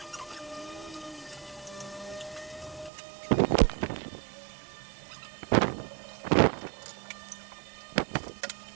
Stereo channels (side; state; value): left; drops out; at 2.9 s